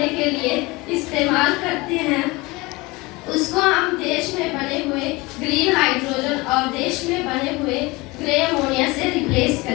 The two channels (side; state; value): right; quieter; 23.3 dB